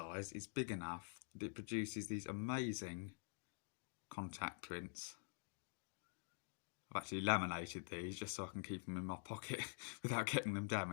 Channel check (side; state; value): right; silent; digital silence